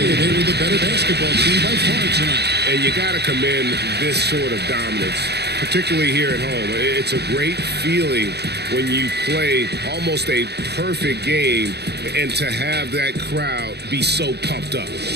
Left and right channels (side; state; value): left; late; 0.48 ms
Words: They were the better basketball team by far tonight. And you got to commend this sort of dominance, particularly here at home. It's a great feeling when you play almost a perfect game and to have that crowd be so pumped up.